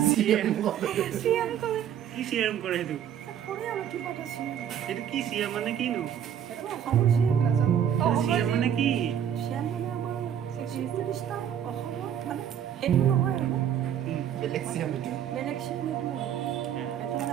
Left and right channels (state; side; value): quieter; left; 9.4 dB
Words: কি চিএম কৰে সেইটো সেইটো কি চিএম মানে কিনো চিএম মানে কি